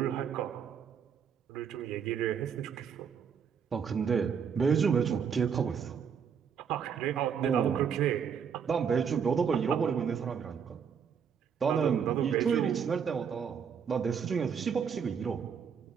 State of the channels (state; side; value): quieter; left; 7.1 dB